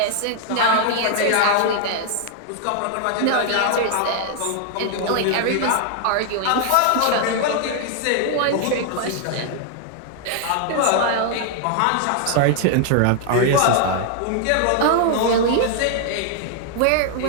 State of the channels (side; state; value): both; different; correlation 0.00